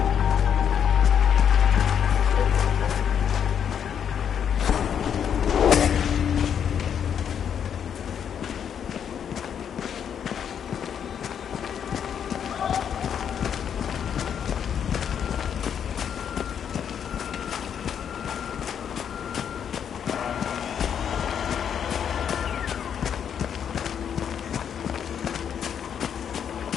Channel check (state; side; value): quieter; right; 8.3 dB